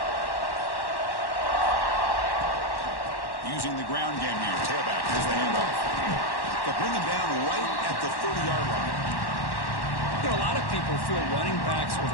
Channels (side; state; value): right; late; 1.1 ms